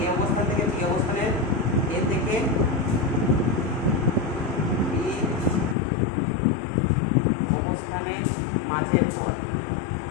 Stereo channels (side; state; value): right; drops out; at 5.8 s